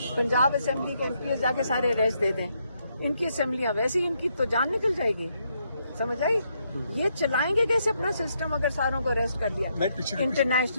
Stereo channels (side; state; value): both; inverted; correlation -0.77